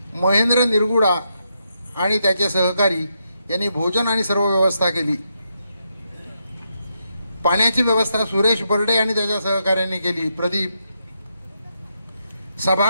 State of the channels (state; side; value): inverted; both; correlation -0.81